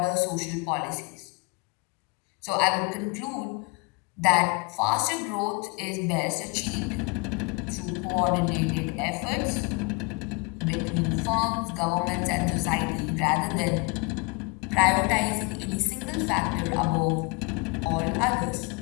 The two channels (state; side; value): quieter; right; 28.8 dB